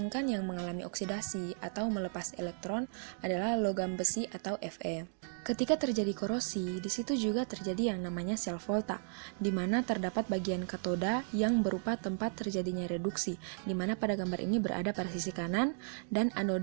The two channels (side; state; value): left; silent; digital silence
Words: yang mengalami oksidasi atau melepas elektron adalah logam besi atau Fe. Ketika terjadi korosi, di situ juga terjadi yang namanya sel volta, di mana terdapat bagian katoda yang berupa tempat terjadinya reduksi, di mana pada gambar ini berada pada sisi kanan, dan